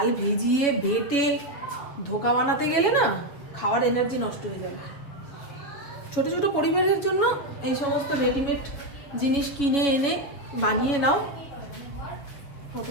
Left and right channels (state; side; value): late; right; 7.3 ms